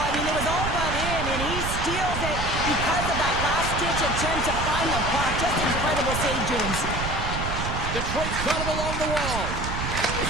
I mean, it was all but in, and he steals it because of that last-ditch attempt to find the puck. Just incredible save, James. Detroit's got it along the wall.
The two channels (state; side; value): noise; right; rumble, 4 dB below the sound